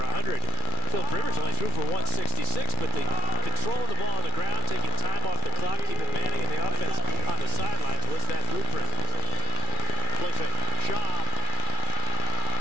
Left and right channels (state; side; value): late; right; 2.4 ms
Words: Philip Rivers only threw for 166, but the controlling the ball on the ground, taking time off the clock, keeping Manning in the offense on the sidelines was that blueprint. Play fake. Schaub.